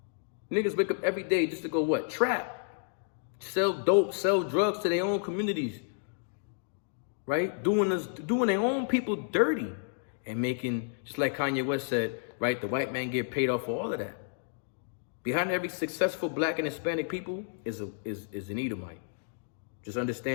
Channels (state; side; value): silent; right; digital silence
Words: Niggas wake up every day just to go what? Trap. Sell dope, sell drugs to their own communities. Right? Doing their own people dirty. And making, just like Kanye West said, right? The white man get paid off for all of that. Behind every successful black and Hispanic people is an Edomite. Just